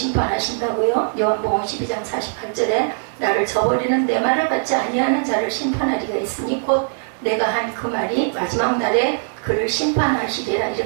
요한복음 12장 48절에 나를 저버리는 내 말을 받지 아니하는 자를 심판하리가 있으니 곧 내가 한 그 말이 마지막 날에 그를 심판하시리라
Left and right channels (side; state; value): left; silent; digital silence